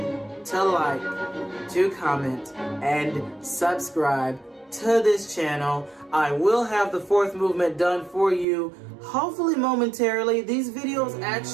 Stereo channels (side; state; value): left; drops out; at 8.5 s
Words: to like, to comment, and subscribe to this channel. I will have the fourth movement done for you, hopefully momentarily. These videos